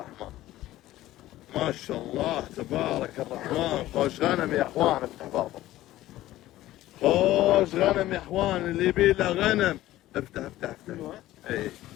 ما شاء الله تبارك الرحمن. خوش غنم يا اخوان، افتح بابا. خوش غنم يا اخوان، اللي يبي له غنم افتح افتح افتح. اي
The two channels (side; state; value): right; quieter; 15.3 dB